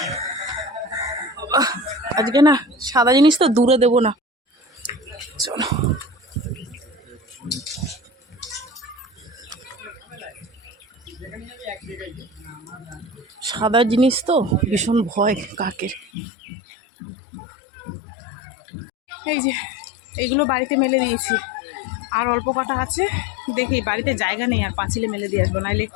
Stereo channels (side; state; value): right; drops out; at 16.1 s